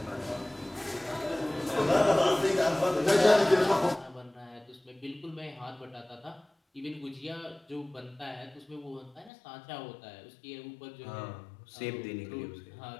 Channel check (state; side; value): drops out; right; at 9.3 s